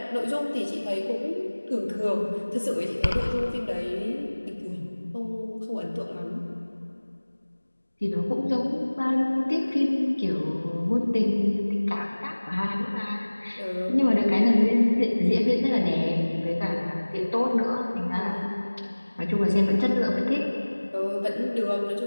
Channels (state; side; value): inverted; both; correlation -1.00